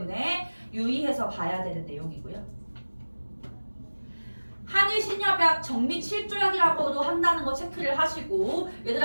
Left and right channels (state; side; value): inverted; both; correlation -1.00